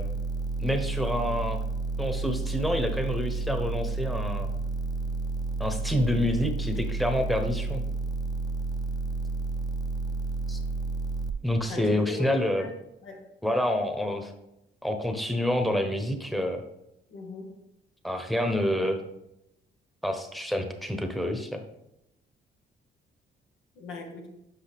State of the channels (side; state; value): both; normal; correlation 0.72